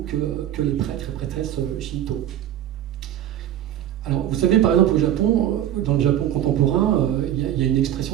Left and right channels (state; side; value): quieter; left; 11.6 dB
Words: que les prêtres et prêtresses Shinto. Alors, vous savez, par exemple, au Japon, dans le Japon contemporain, il y a une